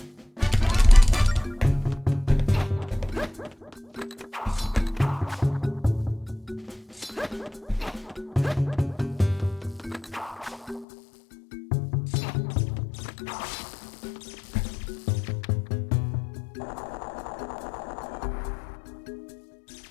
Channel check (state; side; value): drops out; right; at 10.9 s